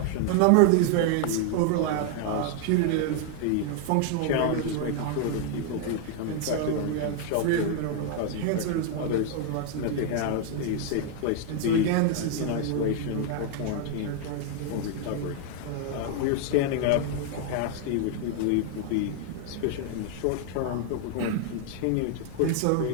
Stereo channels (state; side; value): different; both; correlation 0.00